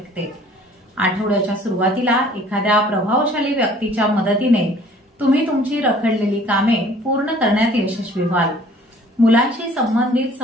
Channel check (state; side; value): normal; both; correlation 0.53